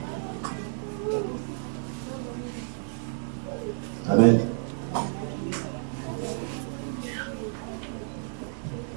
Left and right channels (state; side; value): silent; left; 58 dB below the other